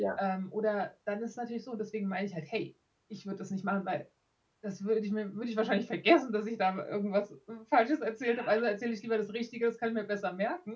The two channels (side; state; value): both; identical; correlation 1.00